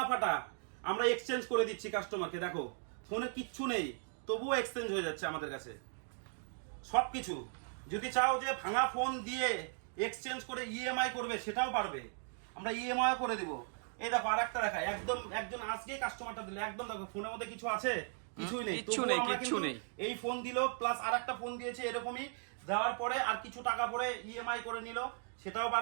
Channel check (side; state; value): left; silent; 53 dB below the other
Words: ফাটা আমরা এক্সচেঞ্জ করে দিচ্ছি কাস্টমারকে। দেখো ফোনে কিচ্ছু নেই, তবুও এক্সচেঞ্জ হয়ে যাচ্ছে আমাদের কাছে সবকিছু। যদি চাও যে ভাঙা ফোন দিয়ে এক্সচেঞ্জ করে ইএমআই করবে, সেটাও পারবে, আমরা ইএমআই করে দিব। এই দেখো আরেকটা দেখায়, একদম একজন আজকে কাস্টমারটা দিল, একদম দেখো ফোনের মধ্যে কিছু আছে, কিছুই নেই, কিচ্ছু নেই। এই ফোন দিল প্লাস আরেকটা ফোন দিয়েছে এরকমই, দেওয়ার পরে আর কিছু টাকা পরে ইএমআই করে নিল, সেটাও